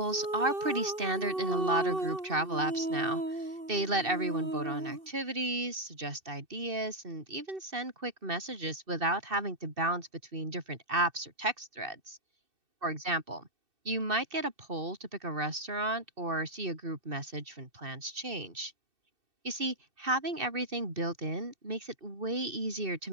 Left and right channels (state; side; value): late; left; 2.6 ms